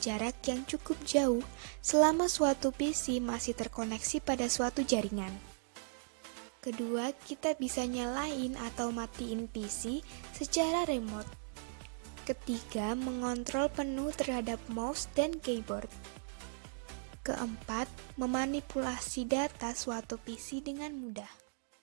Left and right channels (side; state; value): left; silent; digital silence